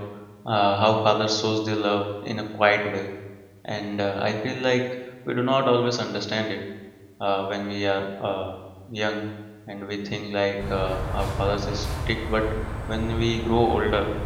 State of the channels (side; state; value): both; identical; correlation 1.00